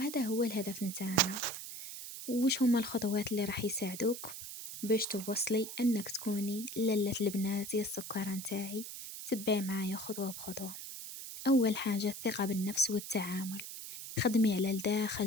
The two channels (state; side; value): noise; right; hiss, 9 dB below the sound